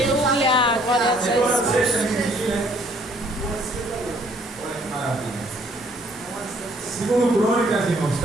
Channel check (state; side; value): normal; both; correlation 0.63